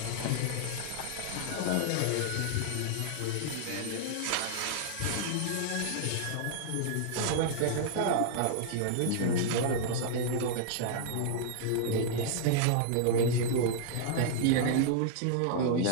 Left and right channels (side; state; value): both; different; correlation -0.01